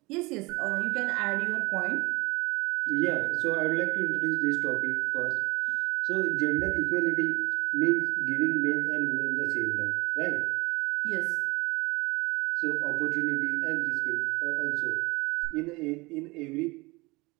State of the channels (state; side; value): quieter; left; 23.9 dB